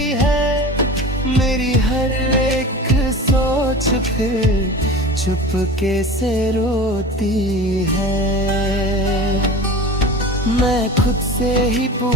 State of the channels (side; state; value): both; normal; correlation 0.35